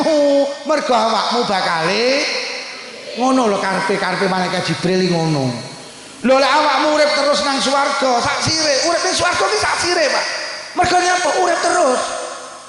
mergo awakmu bakal ngono lho karepe malaikat Jibril ngono. Lho lek awakmu urip terus nang swarga, sak sire, urip ning swarga ki sak sire, Pak. Mergo nyapa urip terus.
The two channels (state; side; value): identical; both; correlation 1.00